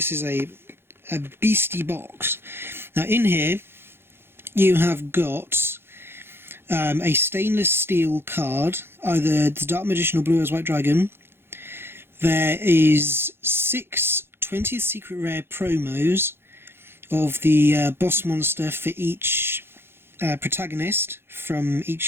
is a beastie box. Now in here you have got a stainless steel card, either the Dark Magician or Blue Eyes White Dragon. There is 6 20th Secret Rare promos of the boss monster for each protagonist from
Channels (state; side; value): late; left; 0.11 ms